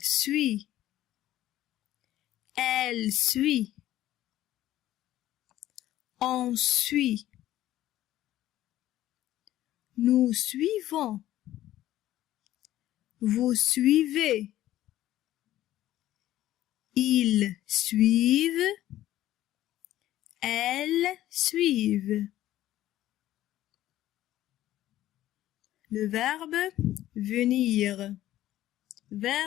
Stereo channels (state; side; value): quieter; right; 13.9 dB